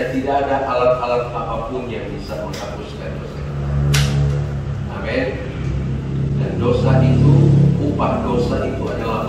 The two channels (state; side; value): identical; both; correlation 1.00